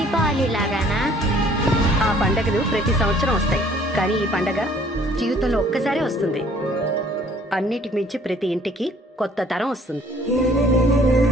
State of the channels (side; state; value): both; normal; correlation 0.58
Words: లాగానా? ఆ పండగలు ప్రతి సంవత్సరం వస్తాయి, కానీ ఈ పండగ జీవితంలో ఒక్కసారే వస్తుంది. అన్నిటికి మించి ప్రతి ఇంటికి కొత్త తరం వస్తుంది.